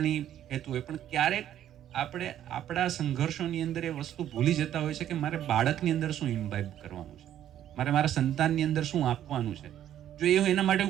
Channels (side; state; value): left; quieter; 11.2 dB